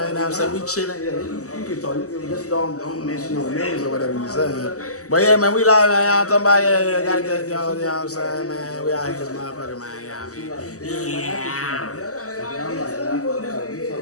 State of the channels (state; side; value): late; right; 0.66 ms